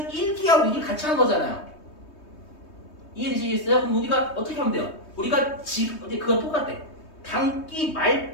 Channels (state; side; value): late; right; 3.2 ms